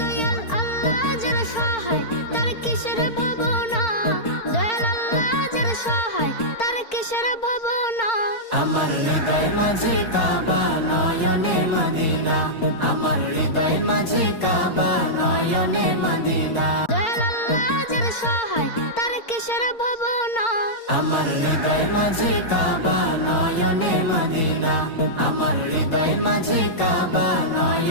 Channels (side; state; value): right; late; 4.4 ms